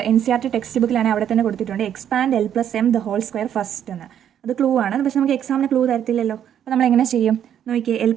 NCERT ടെക്സ്റ്റ് ബുക്കിലാണെങ്കിൽ അവിടെ തന്നെ കൊടുത്തിട്ടുണ്ട് expand l plus M the whole square first എന്ന്. അത് ക്ലൂ ആണ്, പക്ഷെ നമുക്ക് എക്സാമിന് ക്ലൂ തരത്തില്ലല്ലോ. അപ്പോൾ നമ്മൾ എങ്ങനെ ചെയ്യും നോക്കിയേ? L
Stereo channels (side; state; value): left; quieter; 9.7 dB